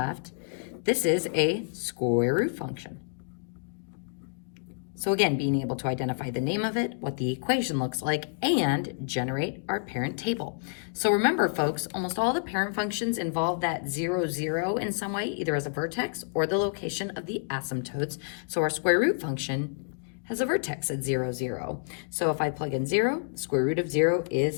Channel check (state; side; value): silent; right; digital silence